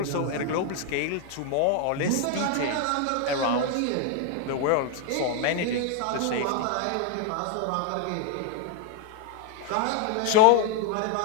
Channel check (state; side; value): different; both; correlation 0.01